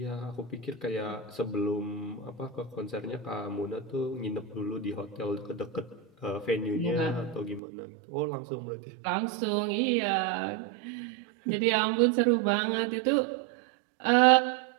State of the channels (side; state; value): left; drops out; at 7.6 s